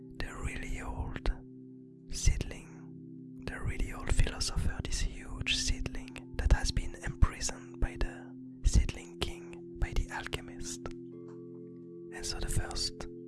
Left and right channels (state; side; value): identical; both; correlation 1.00